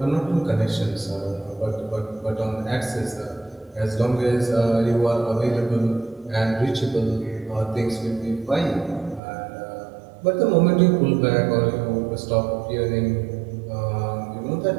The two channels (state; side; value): drops out; left; at 9.2 s